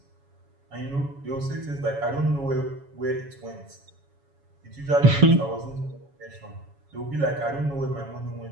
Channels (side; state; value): left; late; 7.2 ms